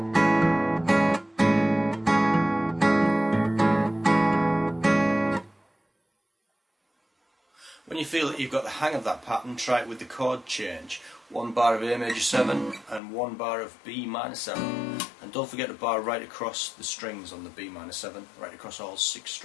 When you feel that you've got the hang of that pattern, try it with the chord change. 1 bar of A major 7 and 1 bar of B minor 7. And don't forget to bar right across the strings on the B minor 7, right across all 6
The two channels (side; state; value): right; drops out; at 13.0 s